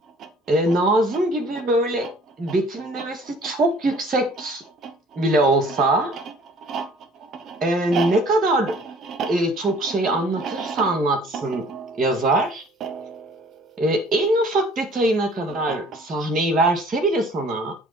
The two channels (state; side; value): normal; both; correlation 0.53